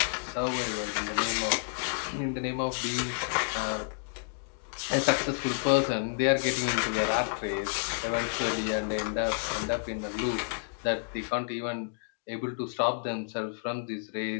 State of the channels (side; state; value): right; silent; digital silence